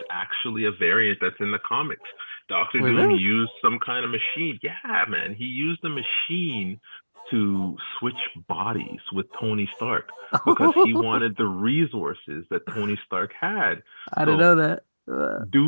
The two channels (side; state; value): both; inverted; correlation -1.00